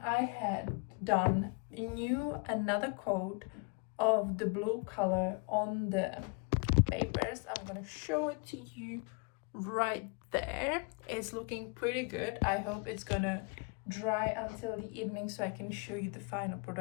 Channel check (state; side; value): quieter; right; 33.1 dB